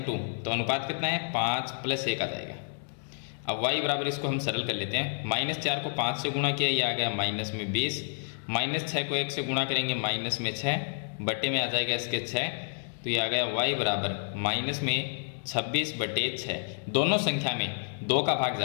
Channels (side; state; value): right; silent; digital silence